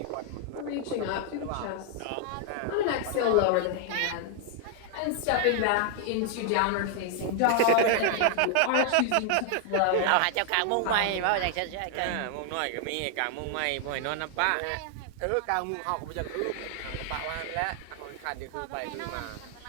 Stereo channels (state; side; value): different; both; correlation 0.00